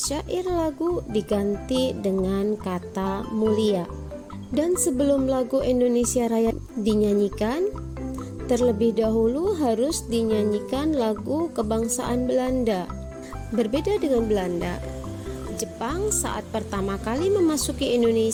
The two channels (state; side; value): identical; both; correlation 1.00